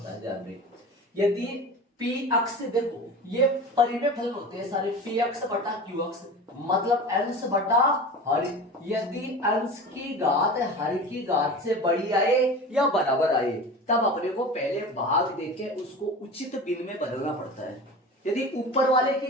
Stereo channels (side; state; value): both; normal; correlation 0.33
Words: है। ध्यान रहे यदि पी अक्स, देखो ये परिमेय फलन होते हैं सारे, पी अक्स बटा क्यू अक्स मतलब अंश बटा हर। यदि अंश की घात हर की घात से बड़ी आए या बराबर आए तब अपने को पहले भाग देके उसको उचित भिन्न में बदलना पड़ता है। यदि ऊपर वाले की